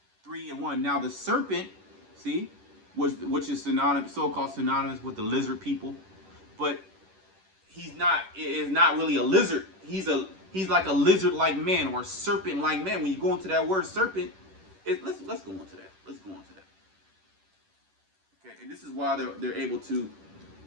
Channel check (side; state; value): left; late; 10 ms